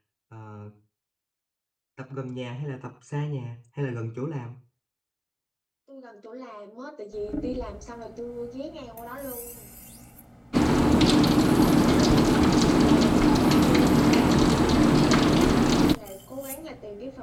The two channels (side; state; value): both; identical; correlation 1.00